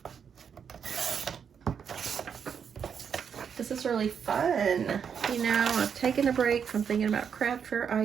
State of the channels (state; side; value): quieter; left; 7.2 dB